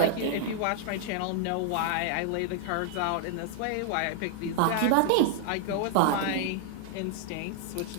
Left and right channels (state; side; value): different; both; correlation -0.01